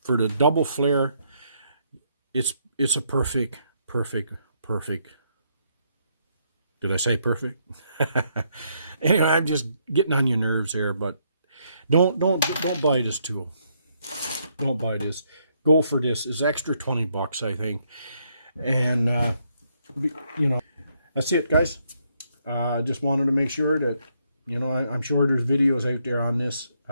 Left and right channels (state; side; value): inverted; both; correlation -0.74